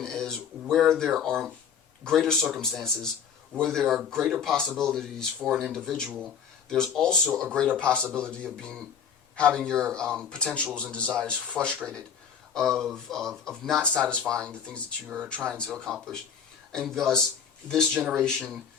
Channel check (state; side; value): quieter; right; 7.3 dB